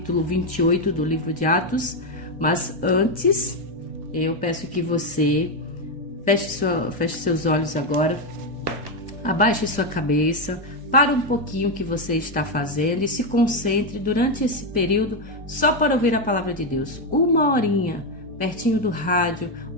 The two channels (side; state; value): both; normal; correlation 0.06